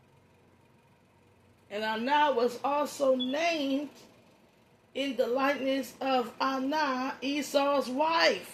And Anah was also named in the likeness of Anah, Esau's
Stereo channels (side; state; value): both; identical; correlation 1.00